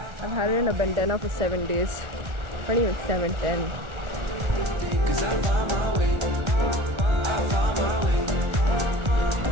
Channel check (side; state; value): left; late; 1.4 ms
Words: I've had it in a bandana for 7 days. Not even 7, 10. Cause I found my way.